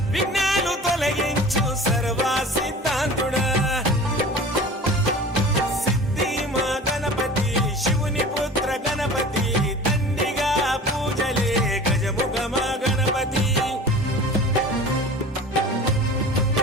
విఘ్నాలు తొలగించు సర్వ సిద్ధాంతుడా సిద్ధి మా గణపతి శివుని పుత్ర గణపతి దండిగా పూజలే గజముఖ మా గణపతి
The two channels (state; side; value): normal; both; correlation 0.39